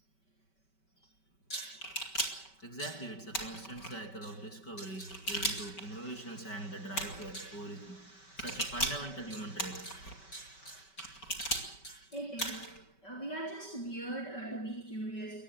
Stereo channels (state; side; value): late; right; 5.2 ms